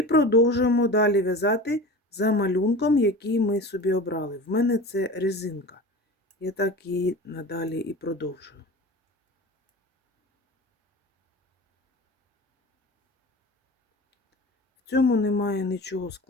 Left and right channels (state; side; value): normal; both; correlation 0.34